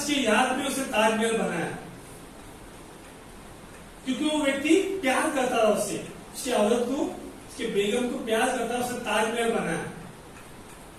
की याद में उसने ताजमहल बनाया, क्योंकि वो व्यक्ति प्यार करता था उससे, उसकी औरत को, उसके बेगम को प्यार करता था, उसने ताजमहल बनाया।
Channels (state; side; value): identical; both; correlation 1.00